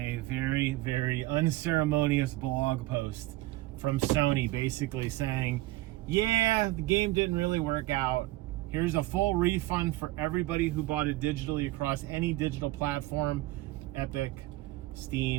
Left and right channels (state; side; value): quieter; left; 18.1 dB